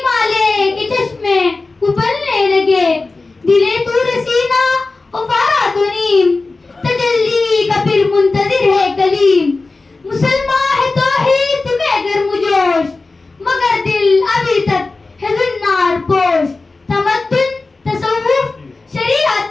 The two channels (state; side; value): quieter; right; 3.6 dB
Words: کے چشمے ابلنے لگے. دلے تور سینہ افارا تو نیم, تجلی کا پھر منتظر ہے کلیم. مسلمان ہے توحید میں گرم جوش, مگر دل ابھی تک ہے زنار پوش. تمدن تصوف